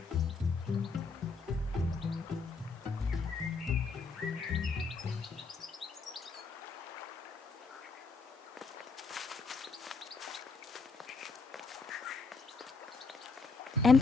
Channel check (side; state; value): right; quieter; 4.3 dB